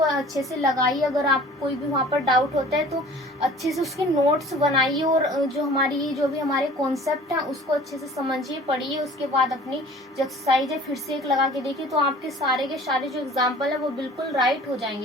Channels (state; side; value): normal; both; correlation 0.46